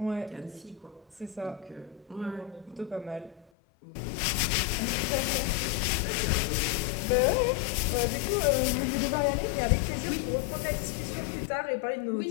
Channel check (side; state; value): right; drops out; at 3.5 s